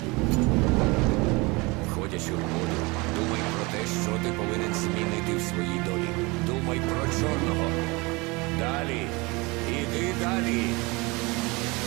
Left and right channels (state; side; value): quieter; left; 25.5 dB